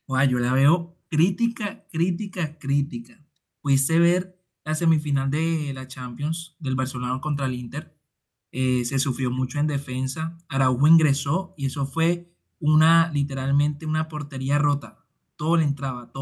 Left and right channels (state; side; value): identical; both; correlation 1.00